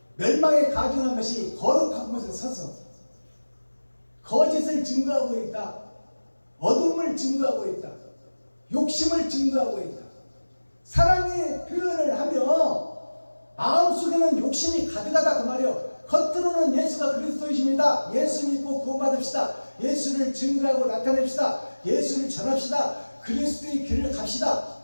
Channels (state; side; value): inverted; both; correlation -1.00